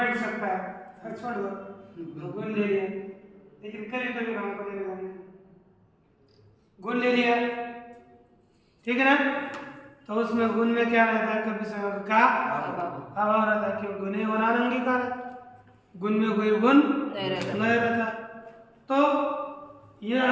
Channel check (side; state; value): both; identical; correlation 1.00